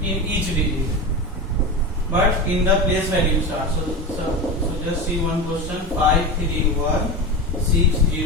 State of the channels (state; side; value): normal; both; correlation 0.22